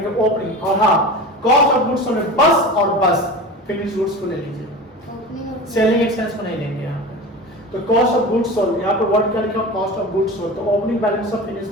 ओपनिंग, और हाँ कॉस्ट ऑफ गुड्स सोल्ड में बस और बस फिनिश गुड्स को ले लीजिए, सेलिंग एक्सपेंस को नहीं लेंगे यहाँ पे। तो कॉस्ट ऑफ गुड्स सोल्ड, यहाँ पे वर्ड क्या लिखा, कॉस्ट ऑफ गुड्स सोल्ड, तो opening balance of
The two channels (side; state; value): both; normal; correlation 0.31